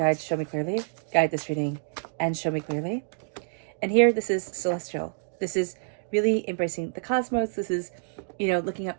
show me clearly. Guide this reading and show me clearly. And here, this is celestial. This is really embracing the cosmos. This is, looking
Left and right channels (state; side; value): silent; left; digital silence